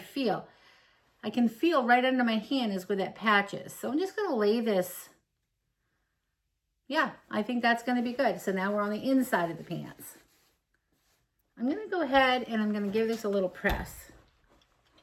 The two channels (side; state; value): both; identical; correlation 1.00